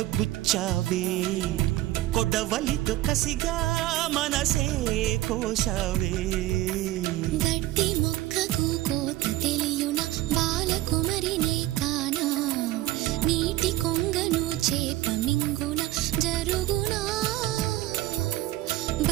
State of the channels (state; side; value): quieter; left; 15.9 dB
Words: గుచ్చావే కొడవలితో కసిగా మనసే కోశావే గట్టి మొక్కకు కోత తెలియున బాలకుమరినే కానా నీటి కొంగను చేప మింగున జరుగునా